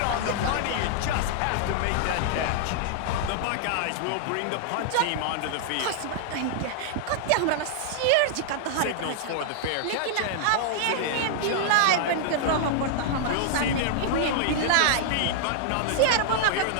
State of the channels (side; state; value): both; different; correlation -0.01